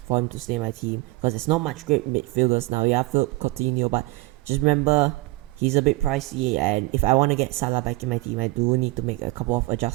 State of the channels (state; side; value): quieter; left; 21.9 dB